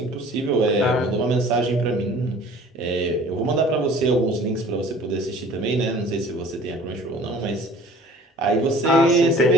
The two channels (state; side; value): normal; both; correlation 0.48